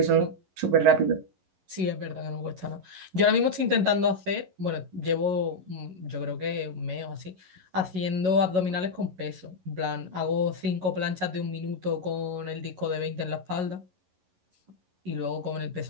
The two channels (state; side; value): late; left; 11 ms